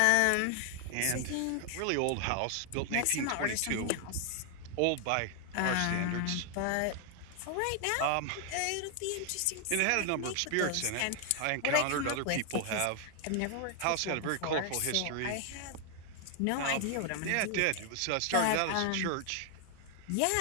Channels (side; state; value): both; different; correlation 0.00